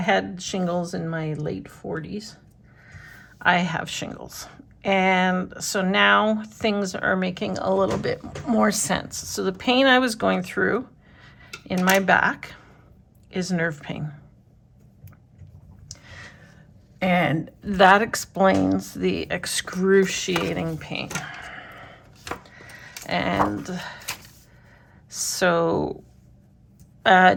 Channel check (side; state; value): both; identical; correlation 1.00